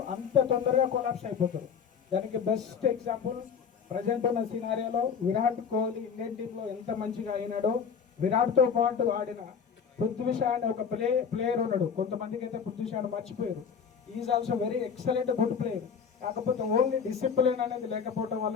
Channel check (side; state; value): right; quieter; 6.7 dB